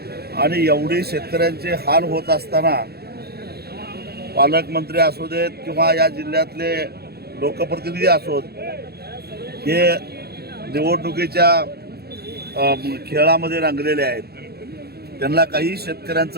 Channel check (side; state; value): left; late; 0.46 ms